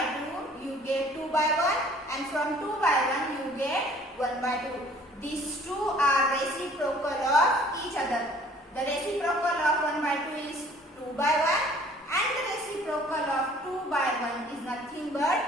2 you get 2 by 1 and from 2 by 1 you get 1 by 2. These two are reciprocal of each other. The reciprocal of 1 by 2 is 2 by 1 and the reciprocal of 2 by 1 is nothing but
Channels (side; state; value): both; normal; correlation 0.54